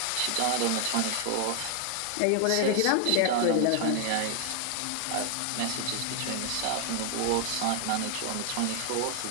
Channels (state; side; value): different; both; correlation 0.00